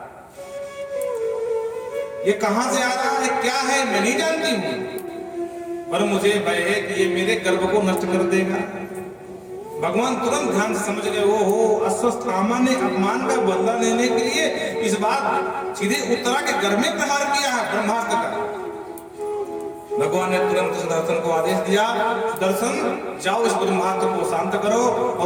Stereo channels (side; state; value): both; identical; correlation 1.00